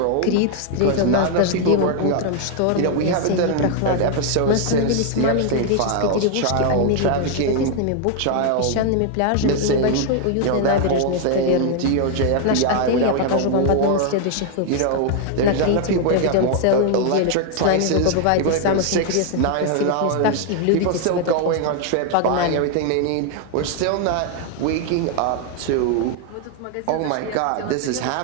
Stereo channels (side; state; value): both; different; correlation 0.00